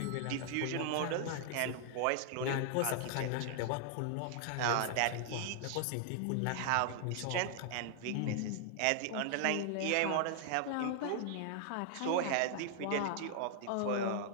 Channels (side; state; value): both; different; correlation -0.01